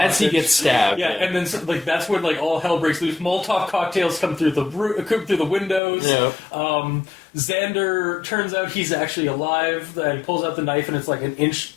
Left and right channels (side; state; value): right; drops out; at 5.8 s